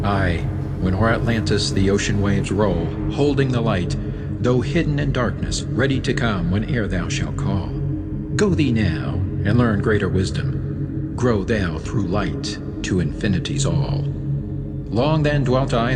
Aye, when o'er Atlantis the ocean waves roll, holding the light, though hidden in darkness, ready to come whene'er thou shalt call. Go thee now, and learn greater wisdom. Grow thou through light to infinity's all. Long then dwelt I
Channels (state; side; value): identical; both; correlation 1.00